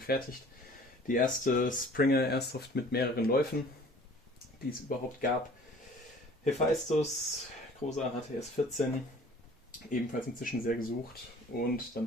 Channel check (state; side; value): normal; both; correlation 0.50